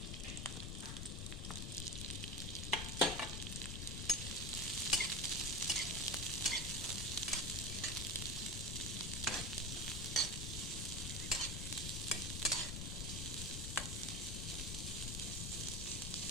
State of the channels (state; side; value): noise; left; rumble, 3 dB below the sound